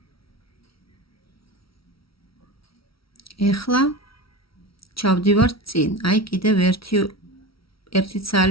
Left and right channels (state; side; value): late; right; 0.75 ms